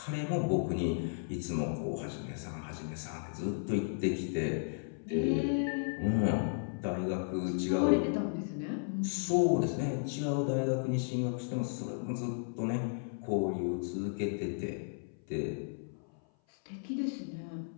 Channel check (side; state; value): right; silent; 55 dB below the other